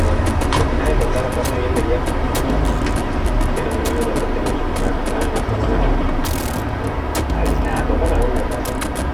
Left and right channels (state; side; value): identical; both; correlation 1.00